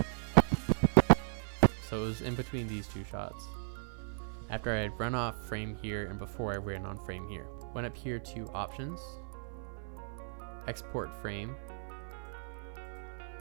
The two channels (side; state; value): left; silent; 54 dB below the other